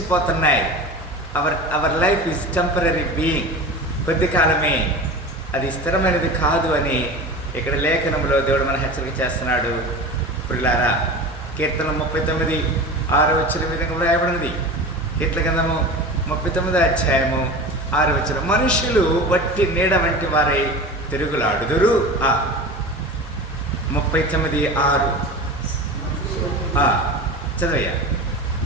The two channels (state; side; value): normal; both; correlation 0.32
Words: Our life is temporary being. కొద్ది కాలమే, అది స్థిరమైనది కాదు అని ఇక్కడ లేఖనంలో దేవుడు మన హెచ్చరిక చేస్తున్నాడు పిల్లారా. కీర్తన 39:6 వచ్చిన విధంగా వ్రాయబడినది. కీర్తన గ్రంథము 39వ అధ్యాయము 6వ వచనం, మనుషులు వట్టి నీడ వంటి వారై తిరుగులాడుదురు. 39:6 చదవయ్యా.